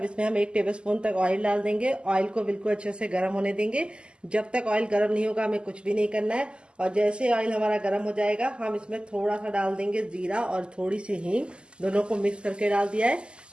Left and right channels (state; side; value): late; left; 0.050 ms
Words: इसमें हम 1 टेबलस्पून तक ऑयल डाल देंगे। ऑयल को बिल्कुल अच्छे से गर्म होने देंगे। जब तक ऑयल गर्म नहीं होगा हमें कुछ भी नहीं करना है। और जैसे ऑयल हमारा गर्म हो जाएगा हम इसमें थोड़ा सा डाल देंगे जीरा और थोड़ी सी हींग, दोनों को मिक्स करके डाल दिया है।